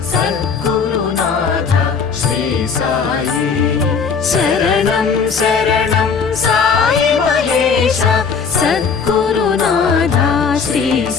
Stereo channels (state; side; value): quieter; right; 5.8 dB